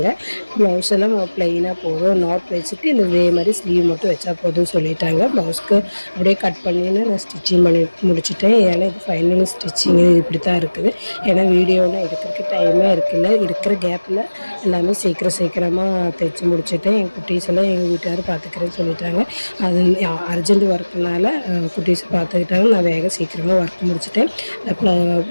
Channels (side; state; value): both; inverted; correlation -1.00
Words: ப்ளவுஸ் எல்லாம் ப்ளைனாக போதும், நாட் வச்சுட்டு இதே மாதிரி ஸ்லீவ் மட்டும் வச்சா போதும்னு சொல்லிட்டாங்க. ப்ளவுஸ்க்கு அப்படியே கட் பண்ணின்னு நான் ஸ்டிச்சிங் பண்ணி முடிச்சிட்டேன். ஏன்னா இது ஃபைனல் ஸ்டிச்சிங்கு இப்படி தான் இருக்குது. ஏன்னா வீடியோலாம் எடுக்கிறதுக்கு டைமே இருக்குல்ல. இருக்கிற கேப்பில் எல்லாமே சீக்கிரமாக தைச்சி முடிச்சுட்டேன். எங்கள் குட்டீஸ் எல்லாம் எங்கள் வீட்டுக்காரர் பார்த்துக்கிறேன்னு சொல்லிட்டாங்க. அது அர்ஜென்ட் ஒர்க்குனால குட்டீஸ் பார்த்துக்கிட்டாங்க. நான் சீக்கிரமாக ஒர்க் முடிச்சுட்டேன்.